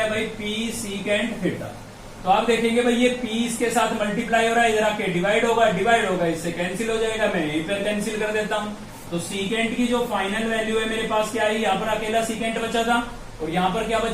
भाई P सीकेंट थीटा। तो आप देखेंगे भाई ये P इसके साथ मल्टीप्लाई हो रहा है, इधर आके डिवाइड होगा, इससे कैंसिल हो जाएगा, मैं यहीं पर कैंसिल कर देता हूं। तो सीकेंट की जो फाइनल वैल्यू है मेरे पास क्या है, यहाँ पर अकेला सीकेंट बचा था और यहाँ पर क्या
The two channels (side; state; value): both; identical; correlation 1.00